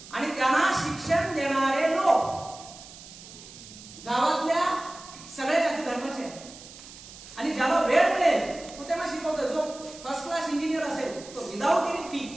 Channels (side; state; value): right; noise; hiss, 17 dB below the sound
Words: आणि त्यांना शिक्षण देणारे लोक गावातल्या सगळ्या जाती धर्माचे आहेत. आणि ज्याला वेळ मिळेल तो त्यांना शिकवतोय. जो फर्स्ट क्लास इंजिनियर असेल तो without any fee,